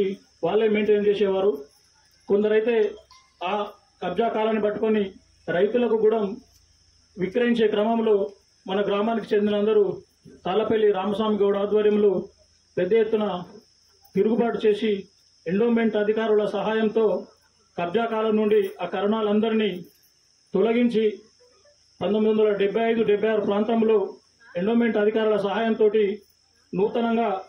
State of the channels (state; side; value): identical; both; correlation 1.00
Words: వాళ్ళే మెయింటైన్ చేసేవారు. కొందరైతే ఆ కబ్జా కాలాన్ని పట్టుకొని రైతులకు కూడా విక్రయించే క్రమంలో మన గ్రామానికి చెందిన అందరూ తాళ్లపల్లి రామస్వామి గౌడ్ ఆధ్వర్యంలో పెద్ద ఎత్తున తిరుగుబాటు చేసి ఎండోమెంట్ అధికారుల సహాయంతో కబ్జా కాలం నుండి ఆ కరణాలందరినీ తొలగించి 1975-76 ప్రాంతంలో ఎండోమెంట్ అధికారుల సహాయంతో నూతనంగా